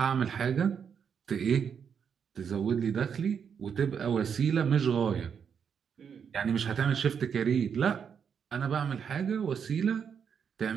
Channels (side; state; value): left; quieter; 7.2 dB